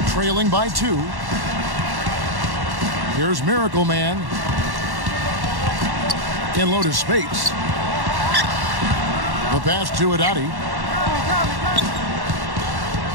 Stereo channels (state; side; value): late; left; 1.1 ms